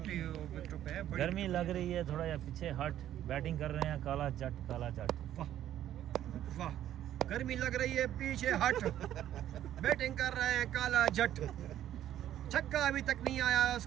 विकेटों पे है। गर्मी लग रही है थोड़ा, या पीछे हट बैटिंग कर रहे हैं काला जट काला जट। वाह वाह, गर्मी लग रही है, पीछे हट बैटिंग कर रहे हैं काला जट। छक्का अभी तक नहीं आया,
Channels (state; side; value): quieter; left; 11.8 dB